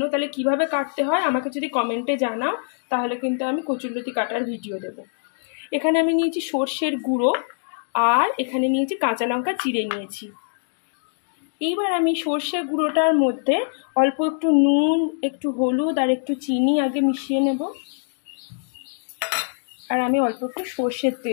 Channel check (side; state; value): right; silent; digital silence